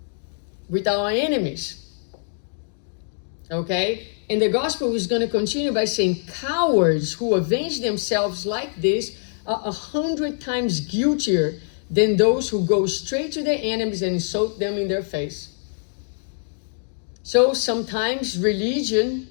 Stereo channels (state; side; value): silent; right; digital silence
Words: with our enemies. Okay? And the gospel is going to continue by saying cowards who avenge themselves like this are 100 times guiltier than those who go straight to their enemies and insult them in their face. So sometimes religion